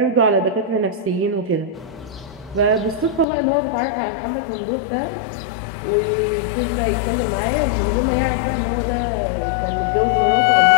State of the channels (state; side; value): drops out; right; at 3.2 s